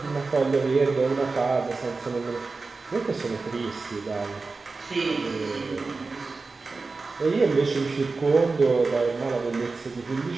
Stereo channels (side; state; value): left; quieter; 4.0 dB